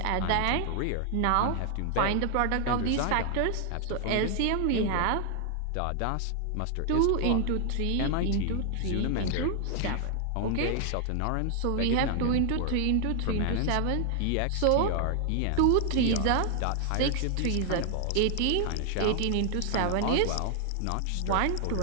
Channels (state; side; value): different; both; correlation 0.00